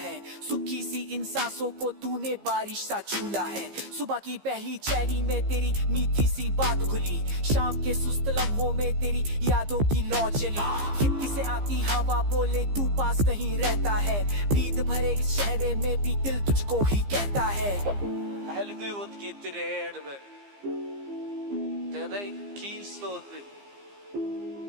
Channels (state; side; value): late; left; 15 ms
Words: सुखी सी इन सांसों को तूने बारिश सा छूला है। सुबह की पहली चैनी में तेरी मीठी सी बात खुली, शाम के सुस्त लम्हों में तेरी यादों की लौ चली। खिड़की से आती हवा बोले तू पास नहीं रहता है, नींद भरे इस शहर में भी दिल तुझको ही कहता है। Helgut getir me Tedej kinslåtning